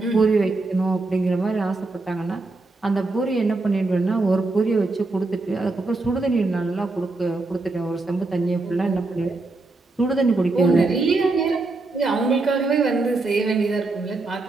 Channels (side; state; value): left; quieter; 3.3 dB